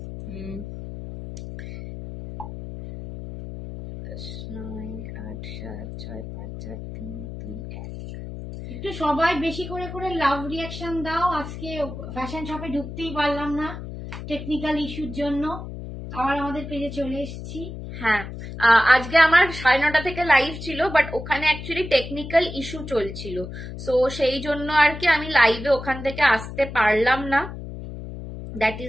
9, 8, 7, 6, 5, 4, 3, 2, 1। একটু সবাই বেশি করে করে লাভ রিয়াকশন দাও। আজকে ফ্যাশন শপে ঢুকতেই পারলাম না টেকনিক্যাল ইস্যুর জন্য, আবার আমাদের পেজে চলে এসেছি। হ্যাঁ, আজকে আমার 9:30 থেকে লাইভ ছিল, বাট ওখানে অ্যাকচুয়ালি টেকনিক্যাল ইস্যু চলছিল, সো সেই জন্য আর কি আমি লাইভে ওখান থেকে আসতে পারলাম না। দ্যাট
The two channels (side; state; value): left; noise; hum, 10 dB below the sound